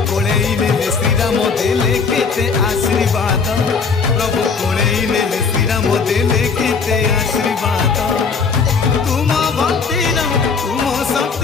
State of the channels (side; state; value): right; quieter; 5.3 dB